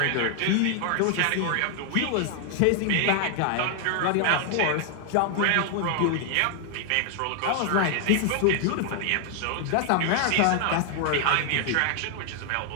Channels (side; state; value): both; different; correlation 0.00